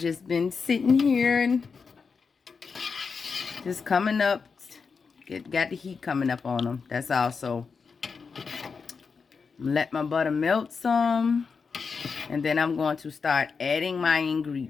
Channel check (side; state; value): right; quieter; 5.3 dB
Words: been sitting here and just coming up. Got the heat coming up on them. That's also. Let my butter melt some. And then I'm going to start adding my